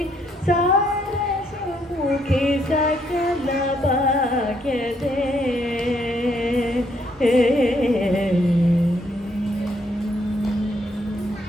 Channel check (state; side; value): normal; both; correlation 0.71